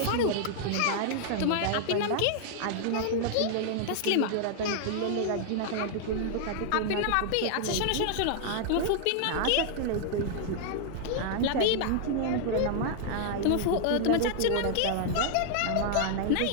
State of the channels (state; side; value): different; both; correlation -0.01